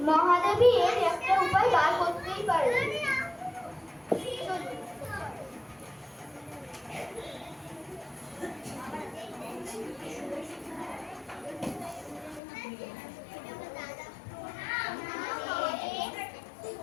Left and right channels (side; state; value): right; drops out; at 12.4 s